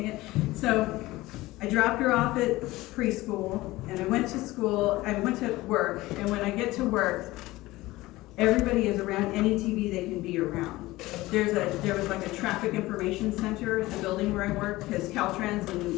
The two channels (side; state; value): right; quieter; 18.7 dB